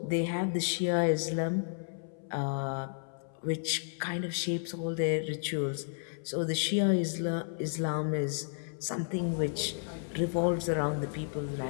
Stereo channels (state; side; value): silent; right; 56 dB below the other